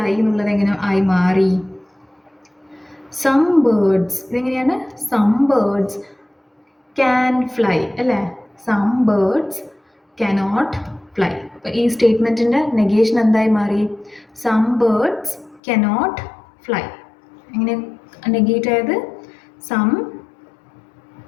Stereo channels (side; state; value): right; drops out; at 15.6 s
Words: എന്നുള്ളത് എങ്ങനെ ആയി മാറി, some birds, ഇതെങ്ങനെയാണ്, some birds can fly അല്ലേ, some birds cannot fly. അപ്പോൾ ഈ സ്റ്റേറ്റ്മെൻറ്റിൻ്റെ നെഗേഷൻ എന്തായി മാറി, some birds cannot fly. എങ്ങനെ നെഗേറ്റ് ആയത്, some